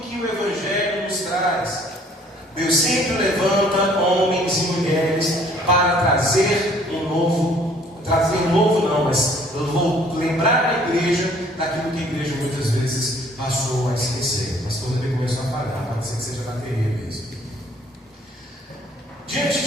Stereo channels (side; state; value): both; normal; correlation 0.58